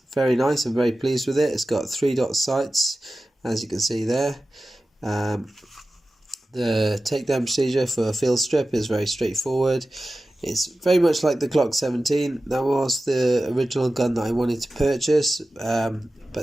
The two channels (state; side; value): normal; both; correlation 0.95